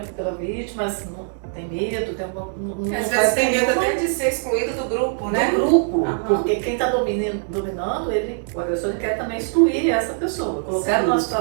vítima, mas não tem medo, às vezes tem medo até de ser excluído do grupo, né? Do grupo, porque quem está dominando, o agressor ele quer também excluir essa pessoa, colocar numa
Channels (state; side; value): silent; left; 64 dB below the other